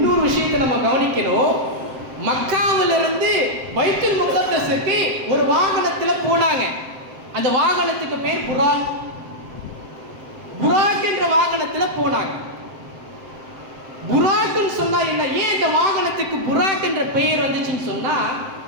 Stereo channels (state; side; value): late; left; 7.7 ms